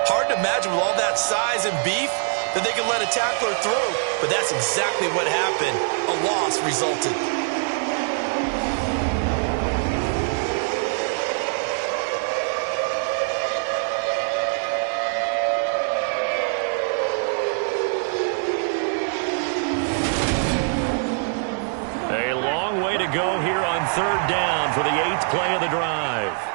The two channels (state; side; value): silent; left; 57 dB below the other